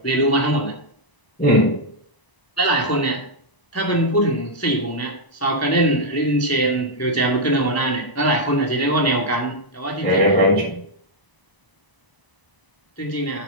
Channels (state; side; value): late; right; 1.0 ms